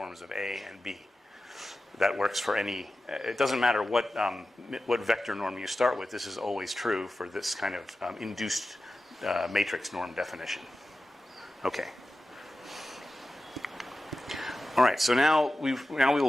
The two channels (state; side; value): normal; both; correlation 0.93